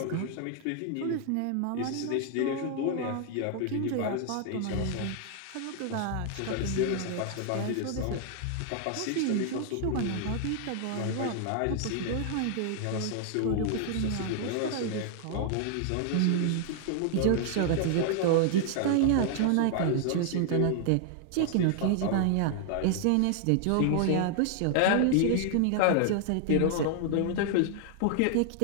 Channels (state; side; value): different; both; correlation 0.00